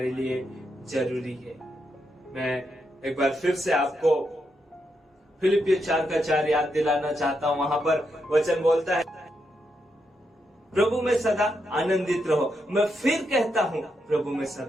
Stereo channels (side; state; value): both; normal; correlation 0.82